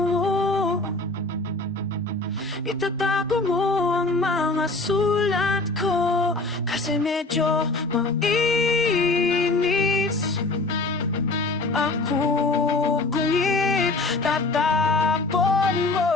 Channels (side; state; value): right; quieter; 3.2 dB